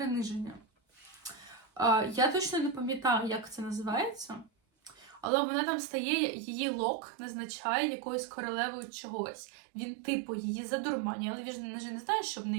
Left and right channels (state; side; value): drops out; left; at 5.2 s